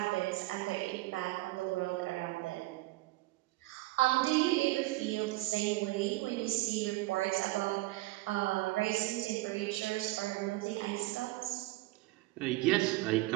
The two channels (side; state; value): left; quieter; 19.7 dB